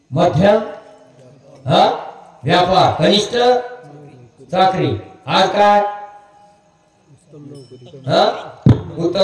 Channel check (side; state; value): both; identical; correlation 1.00